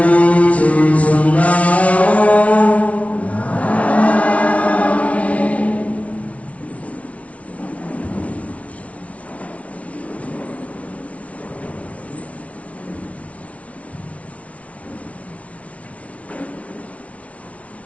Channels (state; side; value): late; right; 0.065 ms